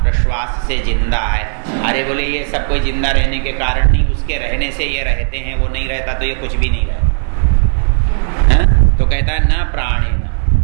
प्रश्वास से जिंदा है। अरे बोले ये सब कोई जिंदा रहने के कारण नहीं, उसके रहने से ये रहते हैं, वो नहीं रहता तो ये कुछ भी नहीं रहता है। तो कहता है न प्राणे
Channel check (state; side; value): silent; left; 68 dB below the other